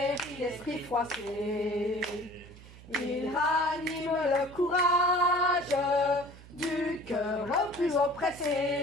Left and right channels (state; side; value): noise; right; hum, 19 dB below the sound